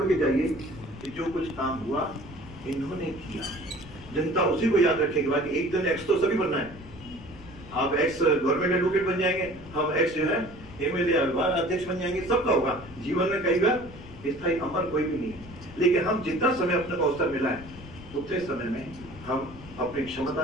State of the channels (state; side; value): noise; left; rumble, 17 dB below the sound